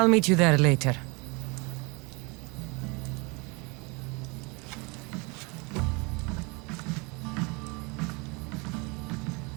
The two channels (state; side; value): quieter; left; 28.8 dB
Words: meet you there later.